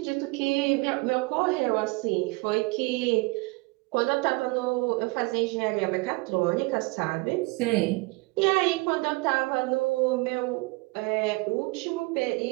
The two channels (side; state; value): left; quieter; 26.4 dB